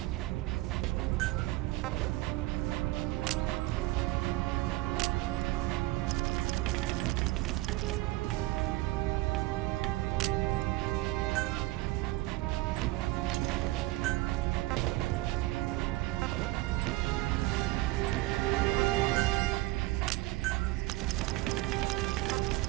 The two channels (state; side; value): quieter; left; 19.2 dB